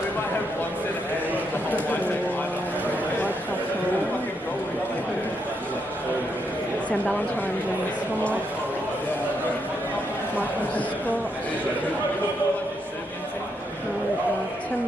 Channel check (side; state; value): both; normal; correlation 0.79